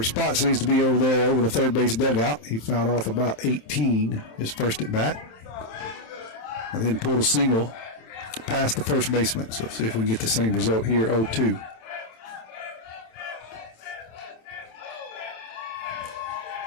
spot seems to be over there, over the third base dugout. He fouled off about 18, his first at bat. And then pulled a single past the first baseman. So see if we can get the same result here, 0-2.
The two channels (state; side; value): late; right; 27 ms